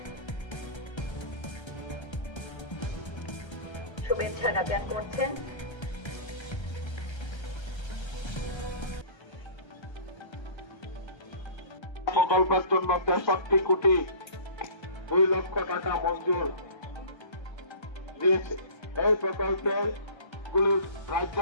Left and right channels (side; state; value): right; late; 1.3 ms